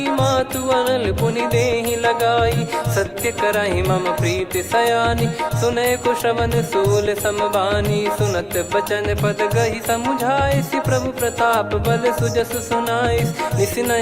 मातु अनल पुनि देहि लगाई। सत्य करहि मम प्रीति सयानी, सुनय को श्रवण सूल समबानी। सुनत बचन पद गहि समुझाए, सि प्रभु प्रताप बल सुजस सुनाइस। निस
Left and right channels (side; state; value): both; identical; correlation 1.00